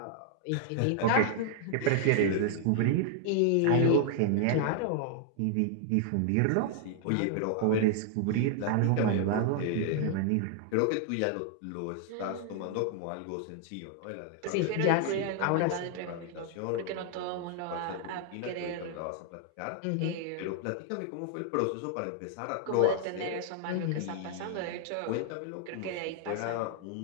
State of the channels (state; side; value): different; both; correlation 0.00